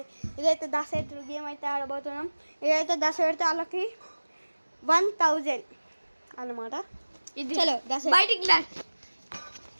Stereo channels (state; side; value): inverted; both; correlation -1.00